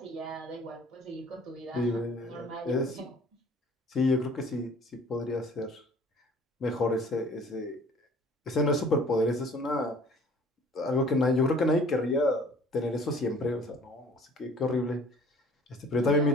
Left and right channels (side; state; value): both; normal; correlation 0.51